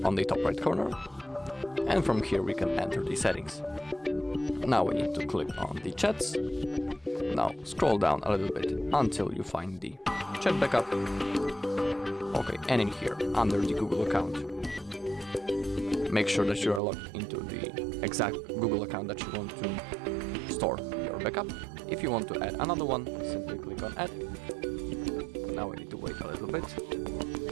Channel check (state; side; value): drops out; left; at 16.8 s